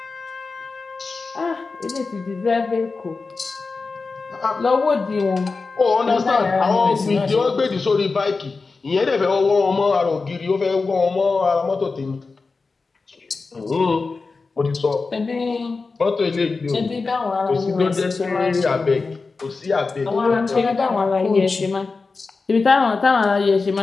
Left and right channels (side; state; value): right; quieter; 4.2 dB